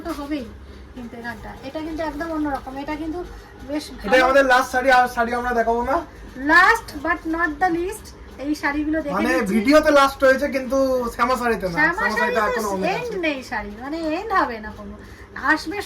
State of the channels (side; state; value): both; identical; correlation 1.00